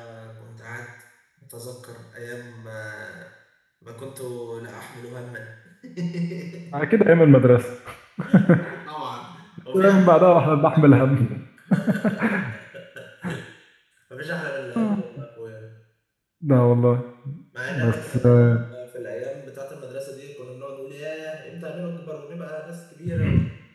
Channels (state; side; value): identical; both; correlation 1.00